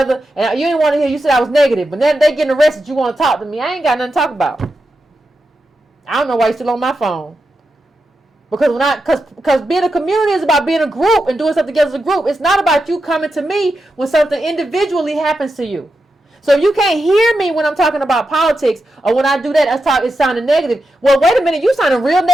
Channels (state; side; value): normal; both; correlation 0.88